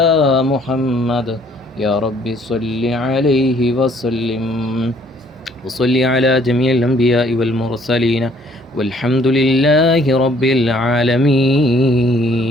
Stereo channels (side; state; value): both; normal; correlation 0.61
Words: محمد يا رب صل عليه وسلم. وصل على جميع الأنبياء والمرسلين والحمد لله رب